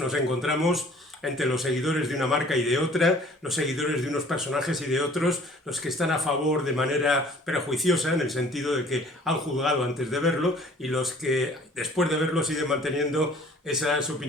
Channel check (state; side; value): normal; both; correlation 0.53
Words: encontramos entre los seguidores de una marca y de otra, los seguidores de unos personajes y de otros, los que están a favor de manera prejuiciosa, en el sentido de que han juzgado antes de verlo, y los que después de verlo siguen manteniendo esas